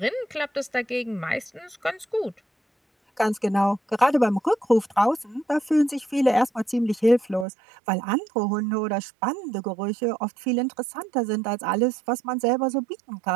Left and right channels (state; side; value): drops out; left; at 7.5 s